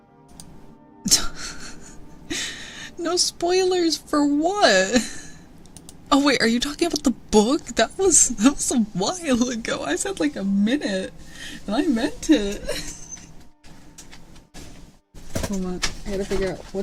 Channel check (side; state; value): both; identical; correlation 1.00